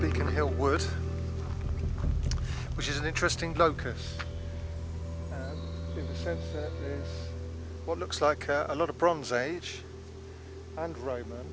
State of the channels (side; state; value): both; identical; correlation 1.00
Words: Hill Wood, which is an interesting locus in the sense that there's what looks like a lot of Bronze Age and Roman